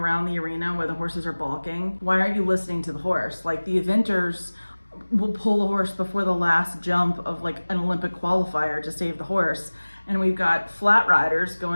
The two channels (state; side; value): inverted; both; correlation -1.00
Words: the arena where the horses are balking, why aren't you listening to the horse? Like the eventers will pull the horse before the last jump of like an Olympic qualifier to save the horse. And we've got flat riders